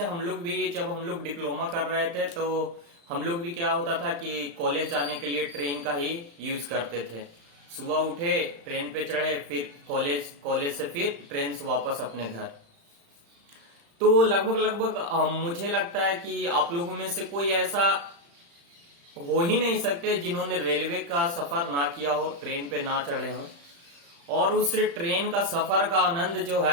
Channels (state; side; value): late; left; 35 ms